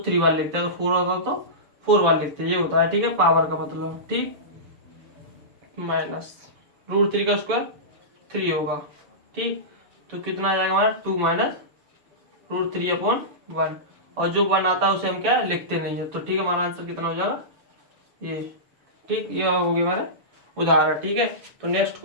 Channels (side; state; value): left; late; 6.8 ms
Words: बार लिखते हैं, अगर 4 होता तो 4 बार लिखते हैं, ये होता है, ठीक है, पावर का मतलब, ठीक। माइनस √3 का स्क्वायर 3 होगा, ठीक। तो कितना आ जाएगा हमारा 2 - √3 अपॉन 1, और जो 1 आता है उसे हम क्या लिखते नहीं है, तो ठीक है, हमारा आंसर कितना हो जाएगा ये, ठीक। ये हो गया हमारा उदाहरण, ठीक है। तो नेक्स्ट